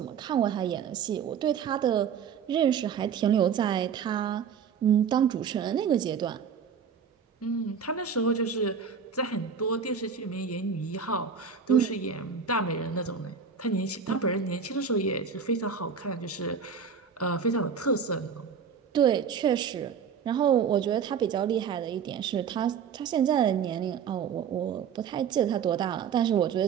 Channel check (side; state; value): left; quieter; 6.7 dB